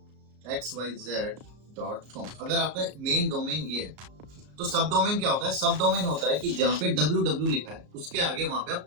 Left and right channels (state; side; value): late; left; 34 ms